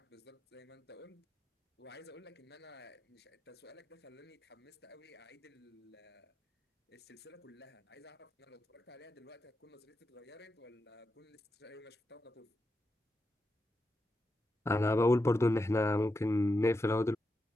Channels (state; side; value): normal; both; correlation 0.87